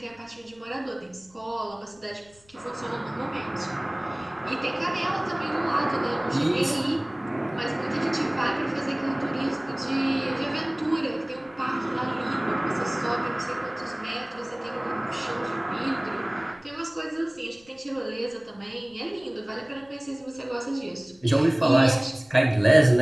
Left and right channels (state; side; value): noise; left; rumble, 29 dB below the sound